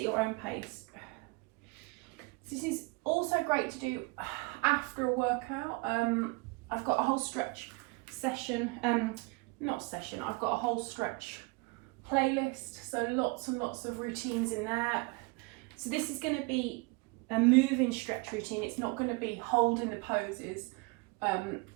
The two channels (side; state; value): left; quieter; 26.8 dB